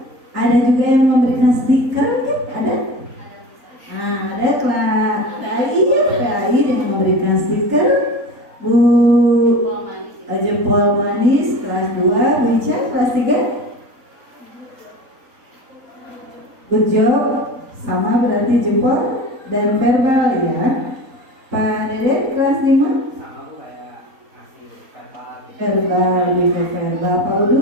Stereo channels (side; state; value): left; late; 3.9 ms